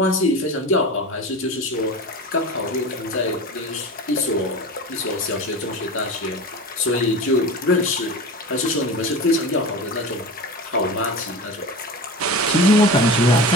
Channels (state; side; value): normal; both; correlation 0.31